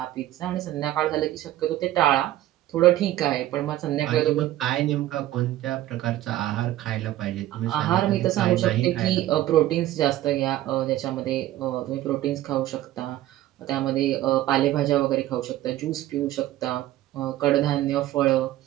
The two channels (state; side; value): quieter; left; 14.4 dB